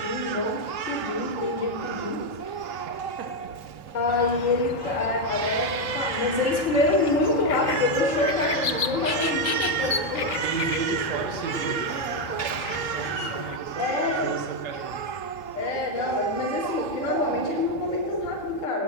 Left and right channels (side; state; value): right; late; 3.1 ms